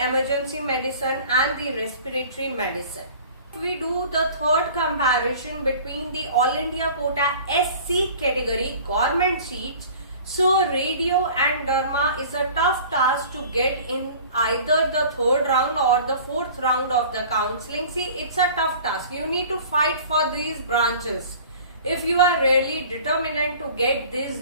medicine and the respiratory medicine. If we do the third comparison between the all India quota SC category government seats, so radio and derma is a tough task to get in either the third round or the fourth round of the counseling. See, it's a tough task. You need to fight for these branches if you are really determined to get these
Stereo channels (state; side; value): inverted; both; correlation -0.45